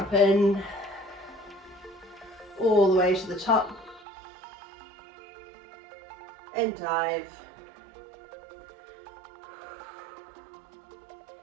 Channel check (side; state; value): left; drops out; at 4.0 s